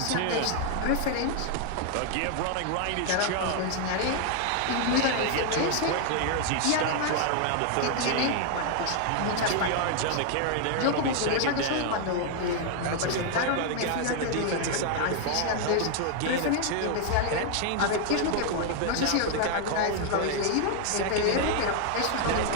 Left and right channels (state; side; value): different; both; correlation 0.00